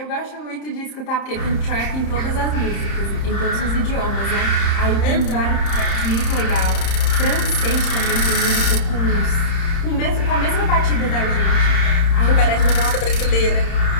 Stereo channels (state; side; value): late; right; 31 ms